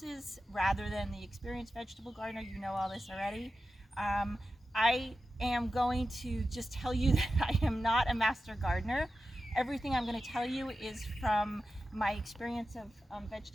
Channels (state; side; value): normal; both; correlation 0.92